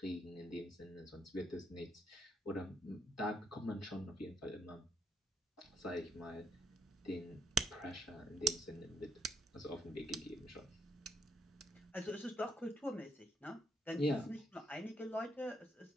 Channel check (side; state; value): both; normal; correlation 0.73